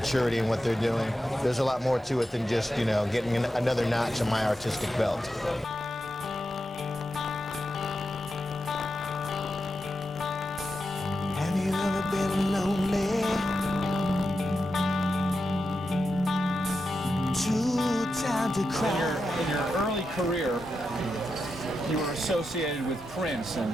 in what they're doing, there's a lot more to it than just, you know, getting another notch on my artistic belt. Have you ever been lonely? Too tired to cry. In your early career, you were associated with Prince, and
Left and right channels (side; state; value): both; normal; correlation 0.88